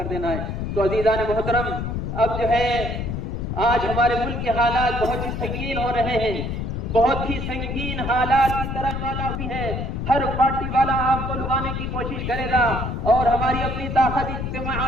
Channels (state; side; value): noise; left; rumble, 3 dB below the sound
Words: دینا ہے. تو عزیزان محترم, اب جو ہے آج ہمارے ملک کے حالات بہت ہی سنگین ہو رہے ہیں, بہت ہی سنگین حالات کی طرح والا بھی ہے. ہر پارٹی والا آپ کو لگانے کی کوشش کرے گا, اور ہماری اپنی طاقت